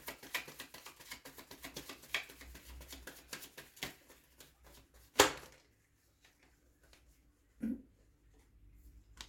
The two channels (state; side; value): identical; both; correlation 1.00